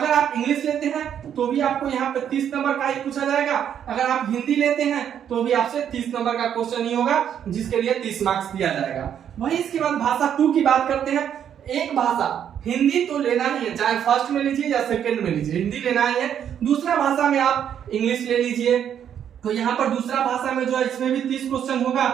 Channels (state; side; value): quieter; left; 9.1 dB